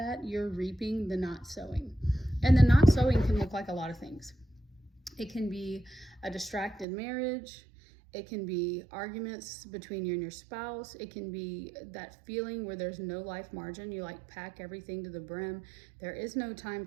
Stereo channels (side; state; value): left; drops out; at 6.9 s